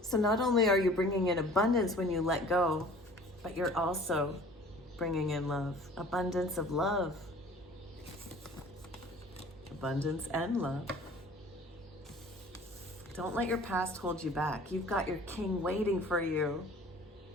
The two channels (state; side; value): normal; both; correlation 0.48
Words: not only are you bringing in abundance when you let go, but you're also bringing in love, abundance of love, abundance and love. Don't let your past hold you back. You've got your king waiting for you.